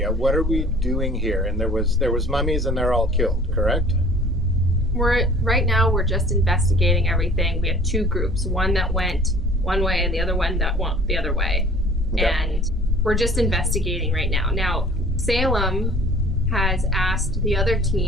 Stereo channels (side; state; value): both; normal; correlation 0.49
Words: What are we doing here? And there was mummies and they're all killed, correct? Right now we're just investigating everything. We have 2 groups, one that went one way and the other one that went the other way. Okay. And we're just investigating right now. Now, Salem has asked the other